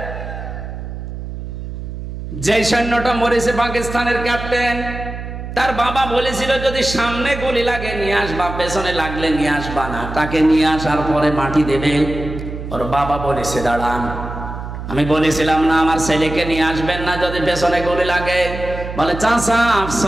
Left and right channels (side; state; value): right; noise; hum, 8 dB below the sound